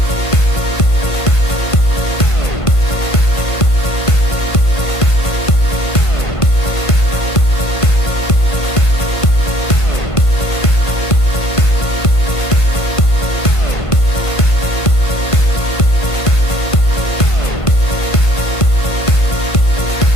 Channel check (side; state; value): right; late; 1.5 ms